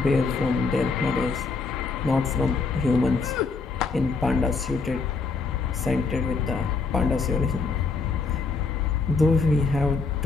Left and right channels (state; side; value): quieter; right; 4.4 dB